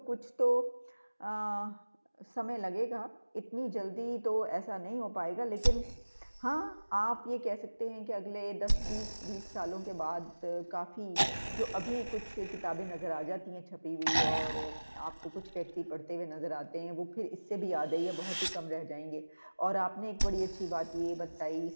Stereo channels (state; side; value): inverted; both; correlation -1.00